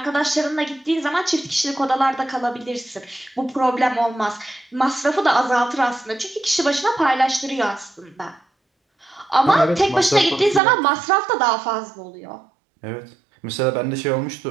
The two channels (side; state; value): left; drops out; at 10.6 s